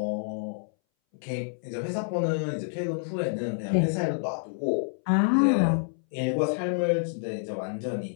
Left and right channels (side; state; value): right; silent; 59 dB below the other